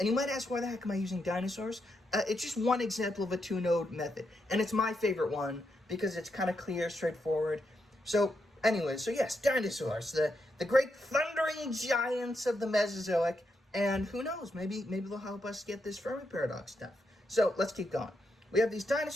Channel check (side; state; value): both; normal; correlation 0.82